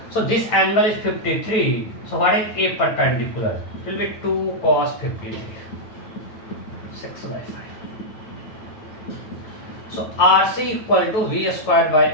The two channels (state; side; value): late; right; 9.2 ms